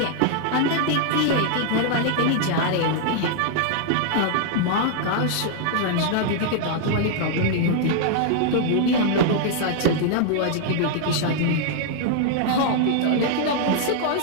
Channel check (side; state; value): both; different; correlation -0.01